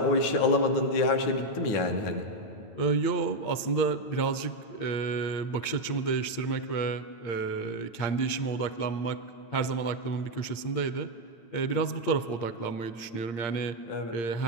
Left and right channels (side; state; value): right; late; 8.6 ms